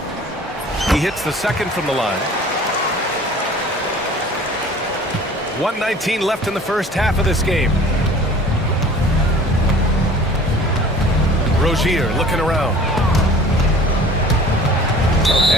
He hits the second from the line. 1:19 left in the first half of this game. Rozier looking around.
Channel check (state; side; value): normal; both; correlation 0.47